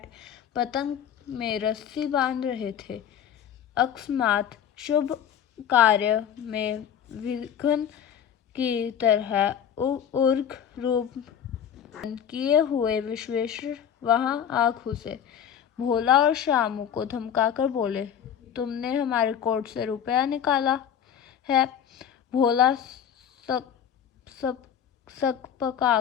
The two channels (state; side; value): quieter; right; 8.8 dB